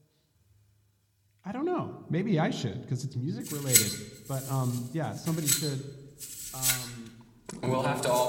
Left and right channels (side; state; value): both; identical; correlation 1.00